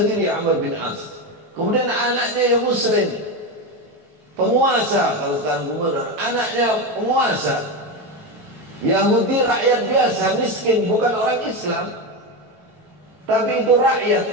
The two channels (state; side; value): late; left; 18 ms